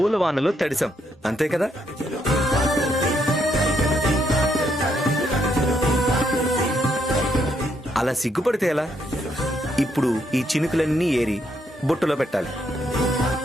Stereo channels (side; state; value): both; normal; correlation 0.75